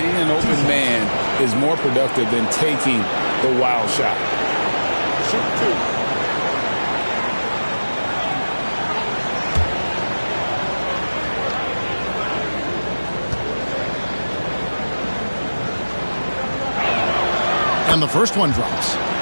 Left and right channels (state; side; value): inverted; both; correlation -1.00